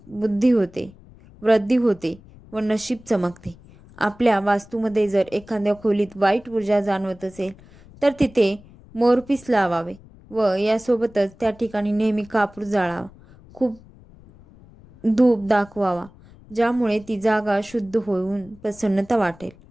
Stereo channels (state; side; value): noise; left; rumble, 23 dB below the sound